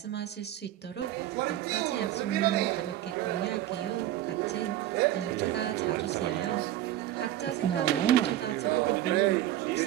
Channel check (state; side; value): quieter; left; 13.0 dB